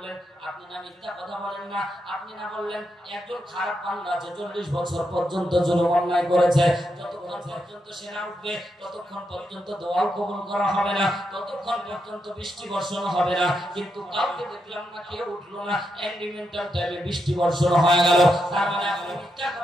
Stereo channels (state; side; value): normal; both; correlation 0.83